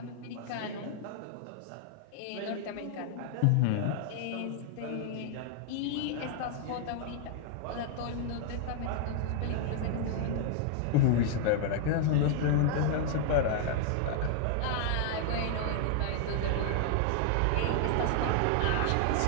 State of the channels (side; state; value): both; different; correlation 0.00